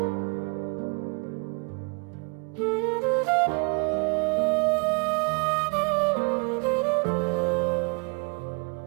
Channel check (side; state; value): left; quieter; 34.2 dB